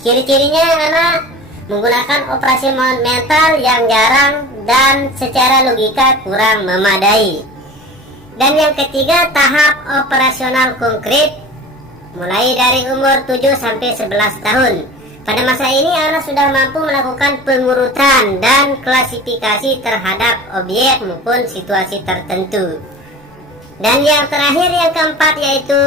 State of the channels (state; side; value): normal; both; correlation 0.38